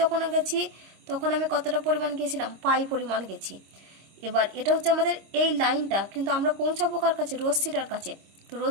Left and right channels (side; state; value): left; late; 26 ms